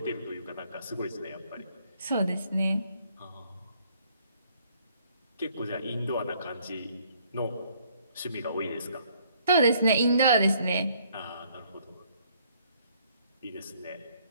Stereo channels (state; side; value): inverted; both; correlation -0.64